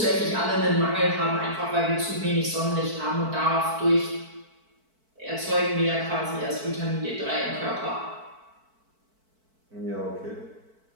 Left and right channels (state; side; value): late; left; 4.5 ms